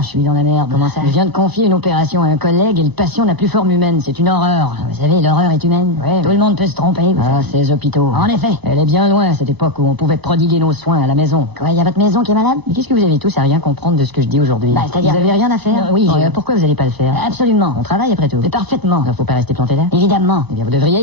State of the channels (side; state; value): right; late; 4.0 ms